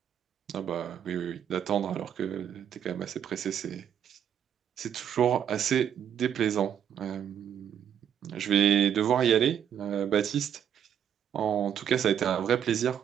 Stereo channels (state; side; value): quieter; left; 9.1 dB